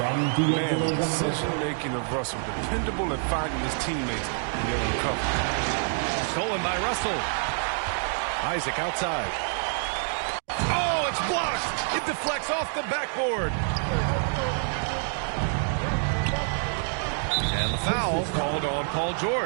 the decision-making of Russell, dependable at finding his teammates and getting them covered. Stolen by Russell. Isaac outside. Oh, it's blocked. It deflects off the backboard. And the foul called on Paul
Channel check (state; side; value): silent; left; 60 dB below the other